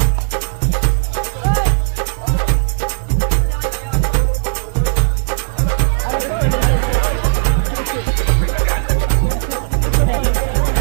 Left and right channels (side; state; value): left; silent; digital silence